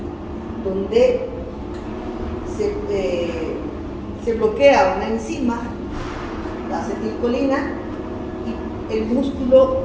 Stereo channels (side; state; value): both; identical; correlation 1.00